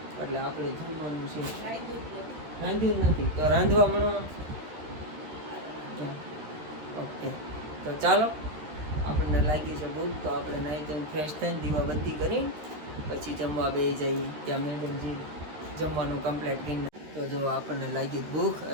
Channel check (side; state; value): left; late; 13 ms